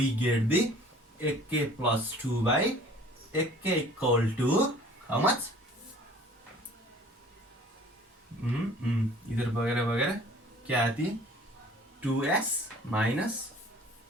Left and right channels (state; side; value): normal; both; correlation 0.50